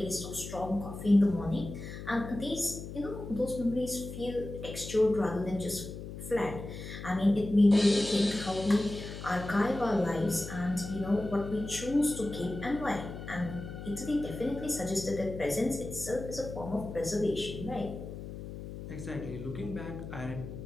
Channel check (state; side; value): noise; left; hum, 10 dB below the sound